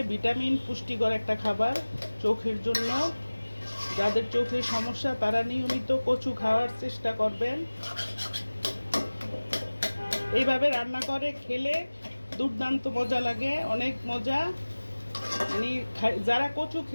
ভিটামিন পুষ্টিকর একটা খাবার চোখের জন্য। যাদের চোখের সমস্যা তারা নিয়মিত কচু খাওয়ার চেষ্টা করবেন। এইভাবে রান্না করে খেলে দুর্দান্ত মজা লাগে, অনেক মজা। মানে যারা কচু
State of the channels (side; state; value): both; inverted; correlation -1.00